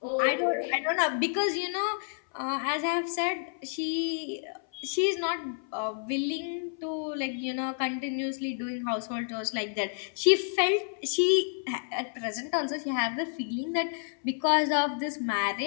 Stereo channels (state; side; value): silent; right; 58 dB below the other